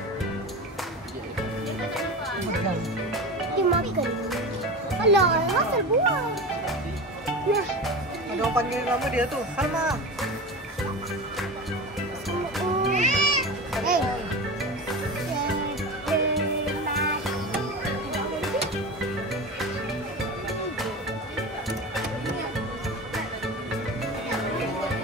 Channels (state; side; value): normal; both; correlation 0.28